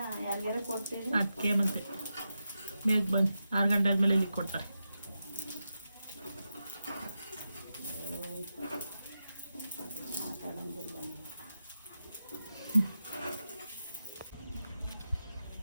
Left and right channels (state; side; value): inverted; both; correlation -0.89